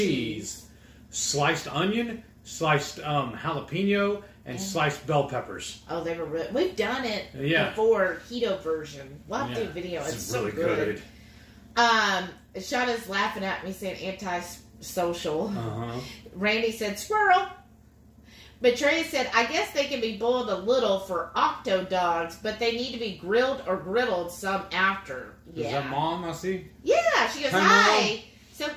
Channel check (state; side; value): identical; both; correlation 1.00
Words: sliced onion, sliced jalapeno, and sliced bell peppers. Oh, they were really... We've done it before, keto version. We'll have to do a video. It's so really good. Shauna's laughing at me saying anti-social. Randy said squirrel. Betraya said, I guess they can be boiled a little for octo dogs, but they need to be grilled or griddled some after. Yeah. Is that Mom, I see? Yeah, she goes, hi. So